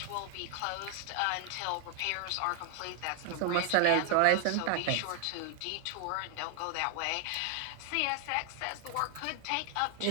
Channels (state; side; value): different; both; correlation 0.00